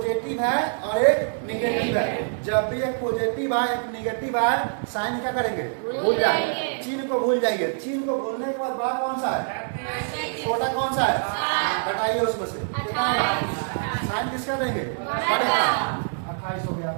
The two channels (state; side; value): silent; left; digital silence